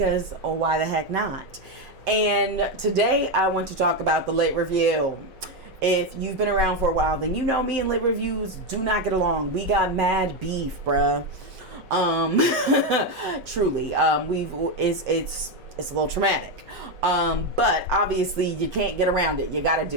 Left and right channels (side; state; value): left; late; 5.3 ms